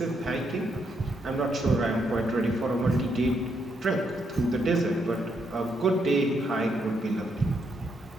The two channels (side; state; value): both; normal; correlation 0.77